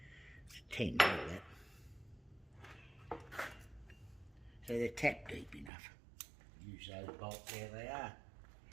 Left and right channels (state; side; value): drops out; left; at 5.7 s